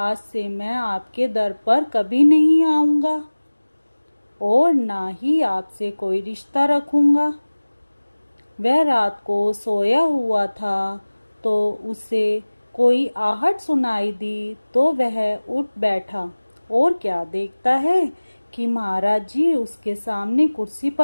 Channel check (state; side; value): inverted; both; correlation -1.00